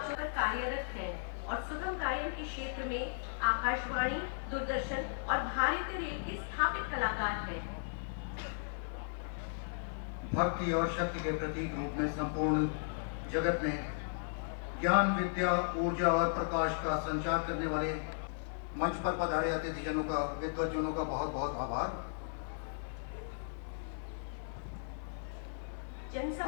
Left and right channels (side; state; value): right; silent; digital silence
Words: कार्यरत हैं और सुगम गायन के क्षेत्र में आकाशवाणी, दूरदर्शन और भारतीय रेल के स्थापित कलाकार हैं। भक्ति और शक्ति के प्रतीक रूप में संपूर्ण जगत में ज्ञान, विद्या, ऊर्जा और प्रकाश का संचार करने वाले मंच पर पधारे अतिथिजनों का, विद्वज्जनों का बहुत बहुत आभार।